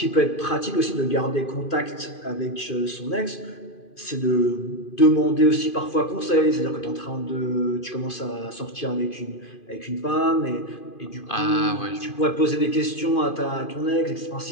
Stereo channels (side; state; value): right; late; 2.5 ms